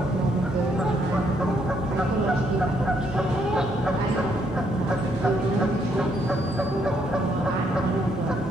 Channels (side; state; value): both; normal; correlation 0.72